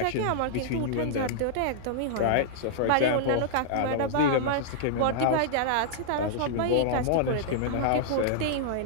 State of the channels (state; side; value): different; both; correlation -0.01